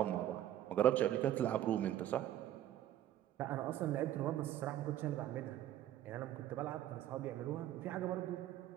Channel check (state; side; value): quieter; left; 12.5 dB